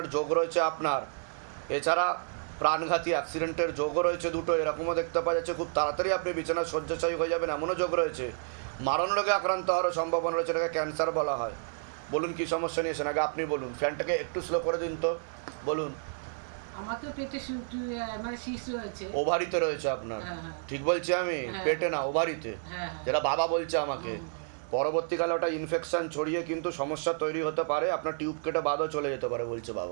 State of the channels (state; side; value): silent; left; digital silence